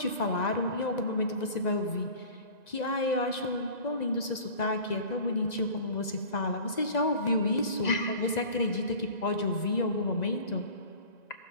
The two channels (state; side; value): late; right; 1.9 ms